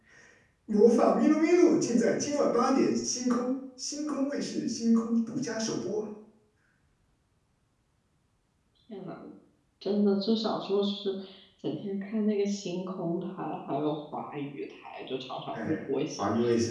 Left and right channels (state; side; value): identical; both; correlation 1.00